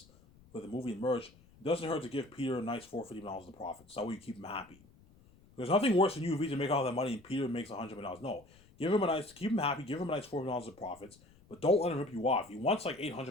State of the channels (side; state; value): left; noise; rumble, 26 dB below the sound